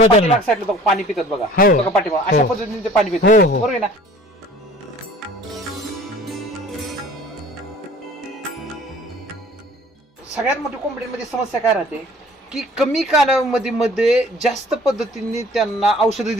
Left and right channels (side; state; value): both; normal; correlation 0.50